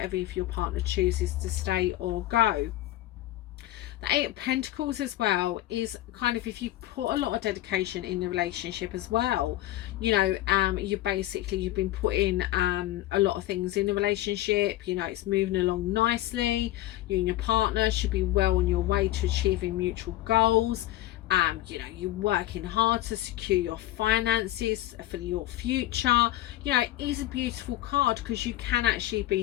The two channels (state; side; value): quieter; right; 15.5 dB